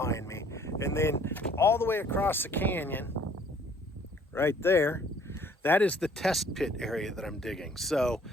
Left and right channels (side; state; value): both; normal; correlation 0.59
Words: me. And then all the way across the canyon, right there, that is the test pit area that I'm digging. So